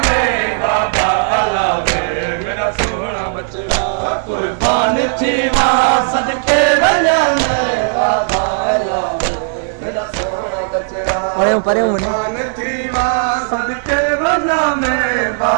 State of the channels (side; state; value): left; silent; digital silence